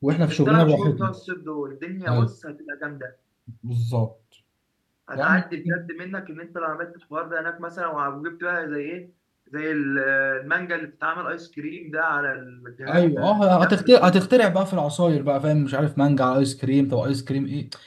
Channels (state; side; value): identical; both; correlation 1.00